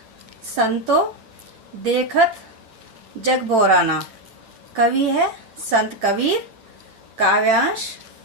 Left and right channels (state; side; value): late; left; 9.2 ms